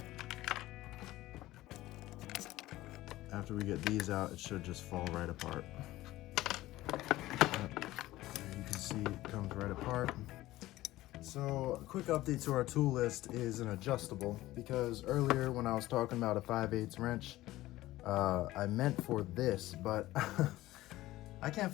After we get these out, it should just fall right apart. You can see it comes right apart. So a quick update to our tool list is an adjustable, because earlier when I was talking about a 5/8 wrench, I meant for this, but I can't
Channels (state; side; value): quieter; right; 16.6 dB